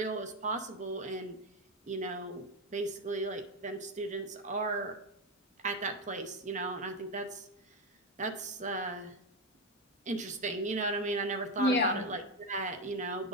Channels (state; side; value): normal; both; correlation 0.10